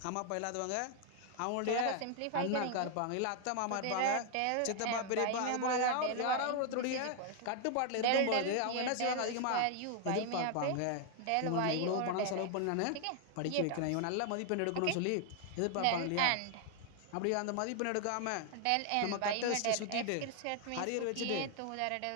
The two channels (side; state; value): both; different; correlation 0.00